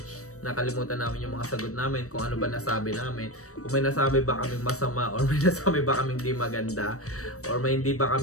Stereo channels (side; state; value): right; late; 0.65 ms